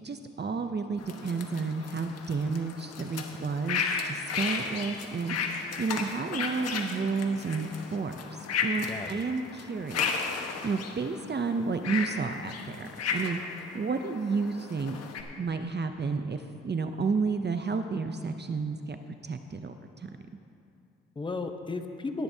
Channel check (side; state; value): both; normal; correlation 0.52